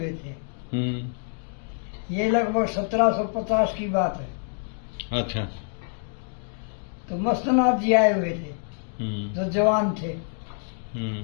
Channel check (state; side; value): silent; right; 60 dB below the other